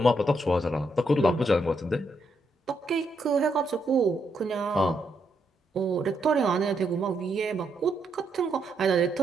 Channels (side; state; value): both; normal; correlation 0.79